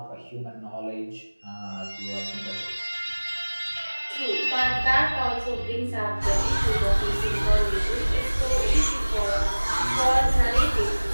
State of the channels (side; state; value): both; inverted; correlation -1.00